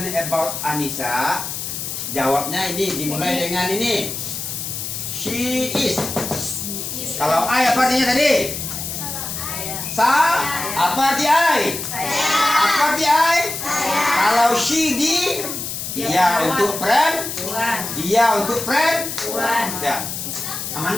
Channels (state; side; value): noise; left; hiss, 5 dB below the sound